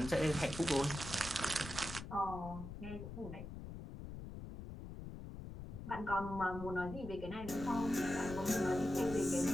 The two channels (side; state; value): left; noise; rumble, 10 dB below the sound